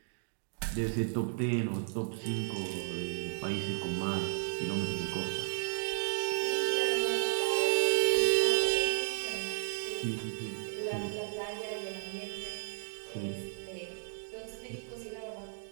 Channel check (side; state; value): left; silent; 55 dB below the other